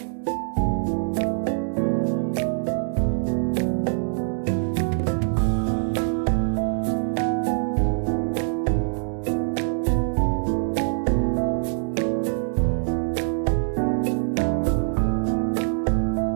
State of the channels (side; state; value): left; silent; digital silence